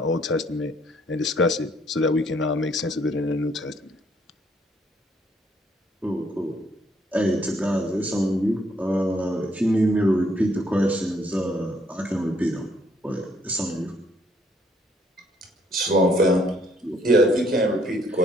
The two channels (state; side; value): normal; both; correlation 0.67